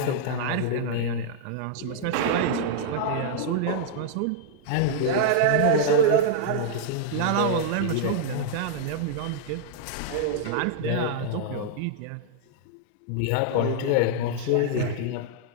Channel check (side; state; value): both; different; correlation -0.01